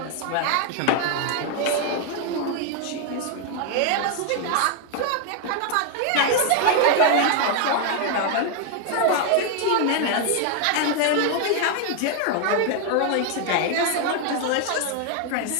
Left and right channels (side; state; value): both; different; correlation 0.01